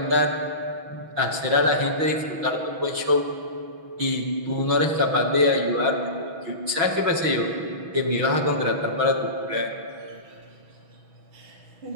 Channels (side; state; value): left; late; 6.2 ms